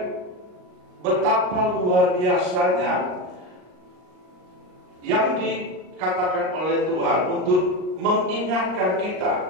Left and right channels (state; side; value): late; left; 38 ms